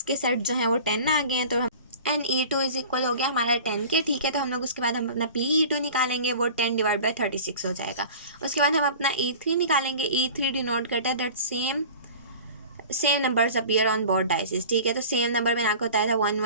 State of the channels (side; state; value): both; inverted; correlation -0.40